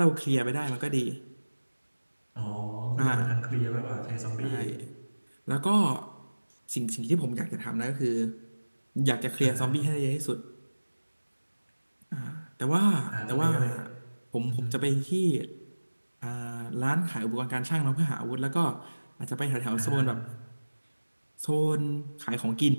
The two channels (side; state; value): both; inverted; correlation -1.00